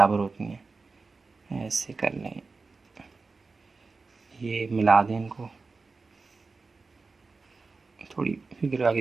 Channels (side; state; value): left; quieter; 4.1 dB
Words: होती हैं, ऐसे कर लें, ये मिला दें इनको, थोड़ी फिगर आगे